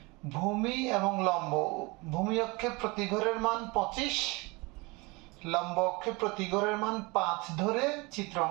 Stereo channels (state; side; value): quieter; left; 25.9 dB